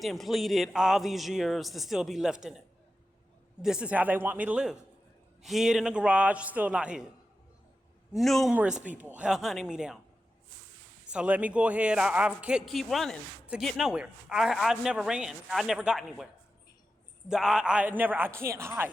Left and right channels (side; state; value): both; normal; correlation 0.91